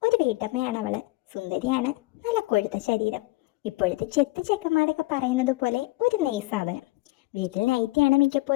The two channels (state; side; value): quieter; right; 21.5 dB